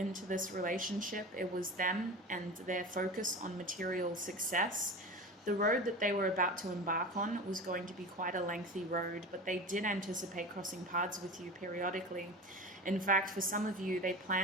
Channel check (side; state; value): both; normal; correlation 0.31